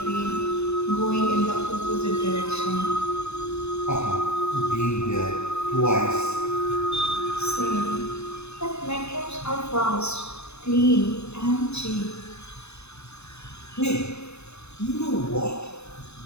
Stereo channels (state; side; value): late; right; 0.80 ms